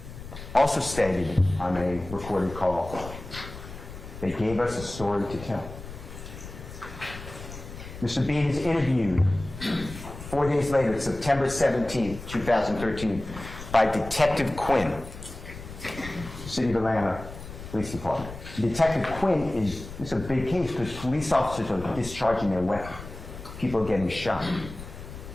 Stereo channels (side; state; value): left; noise; rumble, 13 dB below the sound